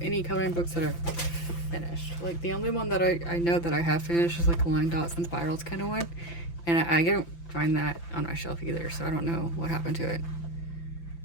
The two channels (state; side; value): late; right; 5.9 ms